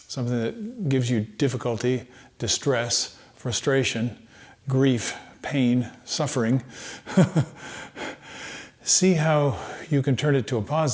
something that gives you difficulty, distress, frustration, grief, pain, suffering, see how you can turn it to a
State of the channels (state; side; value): identical; both; correlation 1.00